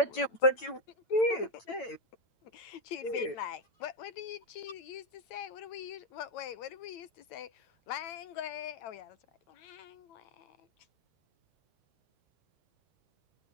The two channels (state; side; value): late; right; 8.9 ms